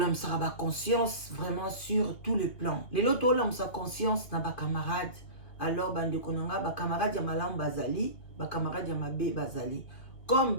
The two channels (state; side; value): late; right; 2.2 ms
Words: sa conscience vraiment sur tous les plans. Les lots tolam sa conscience na ba camarade. Alors bande konanga ba camarade ya malam bazali, ba camarade ya mabe bazali. Comme